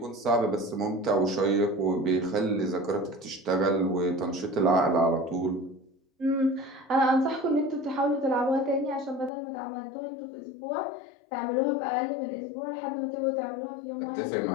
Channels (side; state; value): right; drops out; at 9.3 s